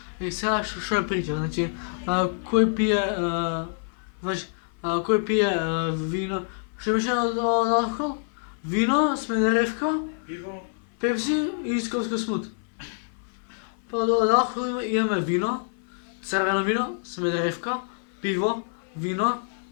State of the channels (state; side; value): silent; right; 57 dB below the other